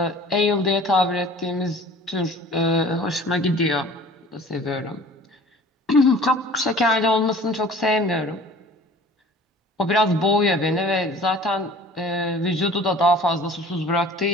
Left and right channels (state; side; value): normal; both; correlation 0.46